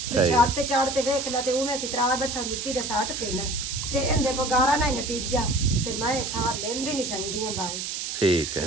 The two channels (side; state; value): right; noise; hiss, 4 dB below the sound